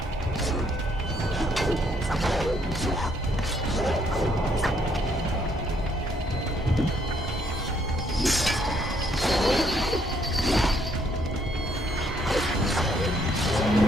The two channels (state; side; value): normal; both; correlation 0.69